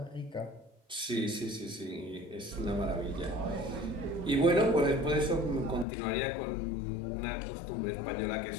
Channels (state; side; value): drops out; right; at 5.9 s